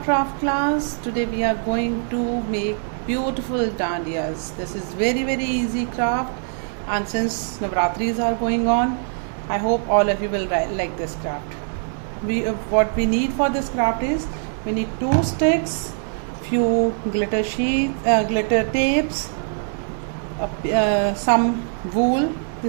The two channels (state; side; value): silent; left; 60 dB below the other